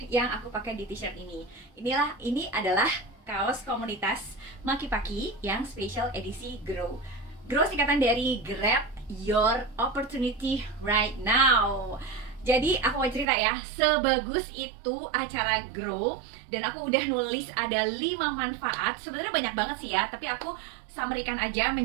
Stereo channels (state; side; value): drops out; left; at 13.2 s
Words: yang aku pakai di t-shirt ini. Ini adalah kaos komunitas Maki Paki yang special edisi grow. Grow singkatan dari Grab Your Opportunity Right Now. Jadi aku mau cerita ya, sebagus itu acara Grow. Dan aku udah nulis ada 5 manfaat. Sebenarnya banyak banget sih ya, tapi aku summary-kan aja